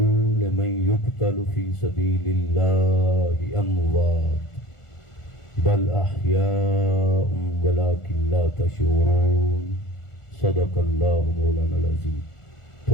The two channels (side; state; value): right; late; 1.4 ms